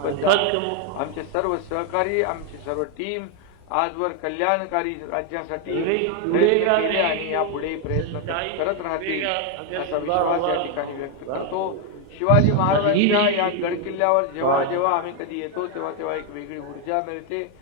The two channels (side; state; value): both; different; correlation 0.01